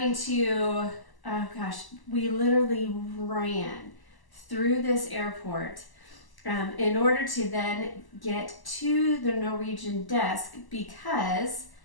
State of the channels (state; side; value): late; right; 1.0 ms